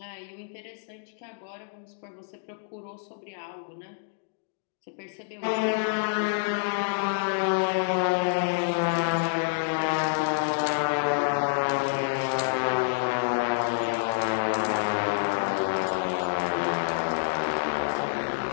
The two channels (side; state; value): right; silent; digital silence